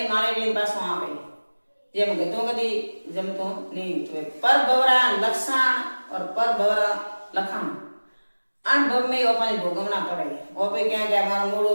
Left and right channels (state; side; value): inverted; both; correlation -1.00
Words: मारे रे पासो आवे जेम गतो कदी जमतो नहीं तो पर भवरा लक्षण और पर भवरा लखण अन भव में अपन भोगवना पड़े ओपे क्या के मारो मोड़ो